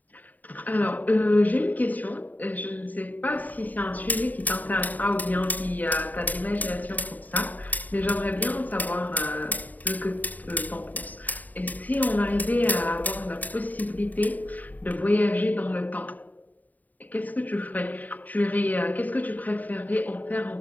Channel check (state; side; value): late; right; 0.080 ms